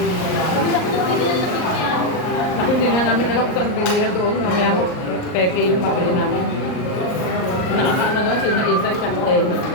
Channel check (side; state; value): right; late; 38 ms